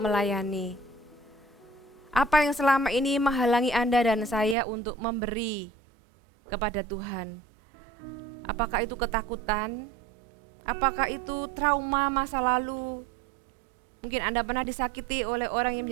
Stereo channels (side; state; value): left; drops out; at 4.5 s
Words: Apa yang selama ini menghalangi Anda dan saya untuk memberi kepada Tuhan? Apakah itu ketakutan? Apakah itu trauma masa lalu? Mungkin Anda pernah disakiti oleh orang yang